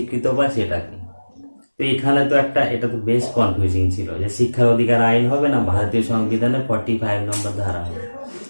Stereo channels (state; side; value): inverted; both; correlation -1.00